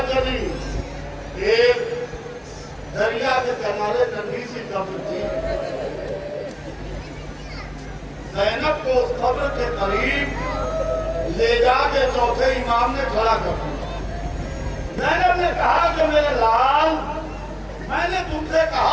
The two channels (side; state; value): both; identical; correlation 1.00